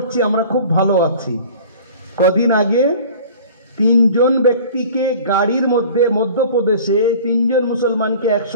আমরা খুব ভালো আছি। কদিন আগে 3 জন ব্যক্তিকে গাড়ির মধ্যে মধ্যপ্রদেশে 3 জন মুসলমানকে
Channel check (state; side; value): inverted; both; correlation -0.44